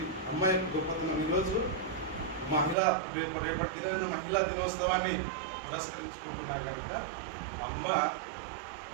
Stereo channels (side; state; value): left; drops out; at 2.8 s